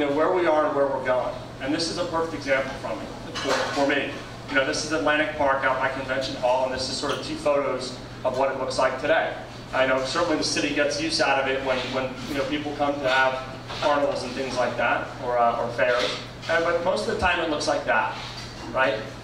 where we are and where we're going. And this is a perfect example for me. This is Atlantic Park out by Convention Hall, and this is sort of 2 photos of what it looks like today. I know certainly the city gets use out of it when people come to have carnivals and things like that, or fairs. But most of the time it looks like that, right?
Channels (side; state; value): both; identical; correlation 1.00